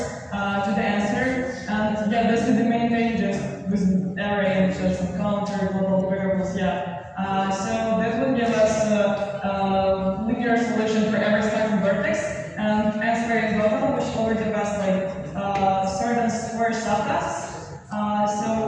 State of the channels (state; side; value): identical; both; correlation 1.00